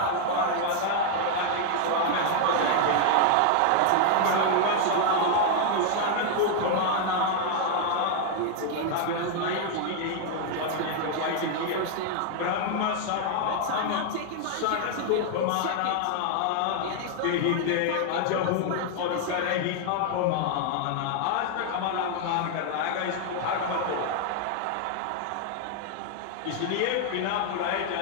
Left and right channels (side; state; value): both; different; correlation 0.00